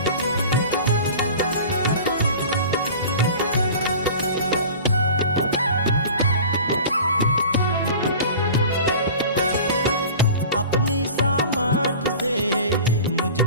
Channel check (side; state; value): both; inverted; correlation -0.39